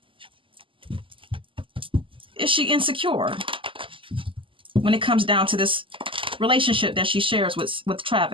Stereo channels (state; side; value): late; left; 0.25 ms